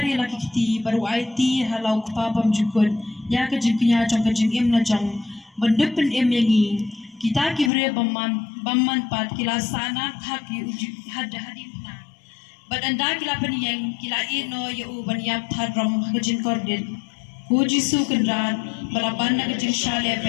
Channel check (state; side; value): drops out; right; at 7.7 s